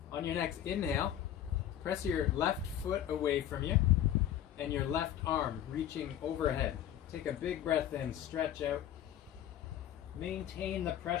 On your next inhale, press your left foot away from you and your left arm reaching overhead. Take a big breath in, stretch out. Maintain the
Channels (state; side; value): quieter; right; 11.2 dB